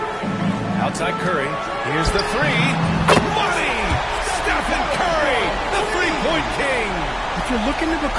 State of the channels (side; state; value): both; identical; correlation 1.00